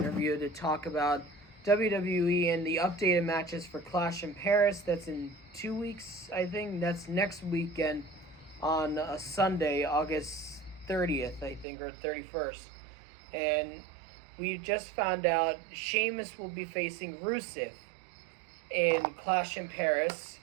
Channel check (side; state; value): left; drops out; at 11.7 s